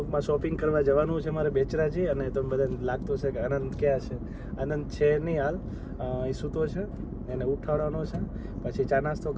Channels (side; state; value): both; identical; correlation 1.00